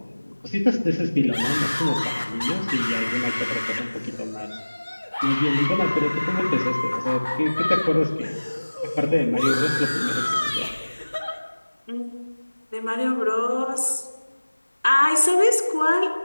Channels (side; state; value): both; inverted; correlation -1.00